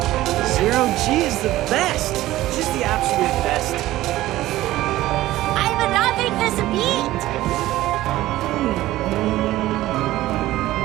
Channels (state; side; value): quieter; left; 15.9 dB